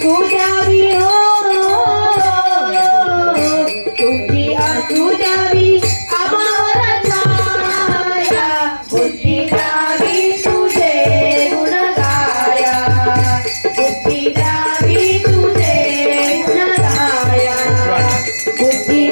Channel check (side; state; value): both; inverted; correlation -1.00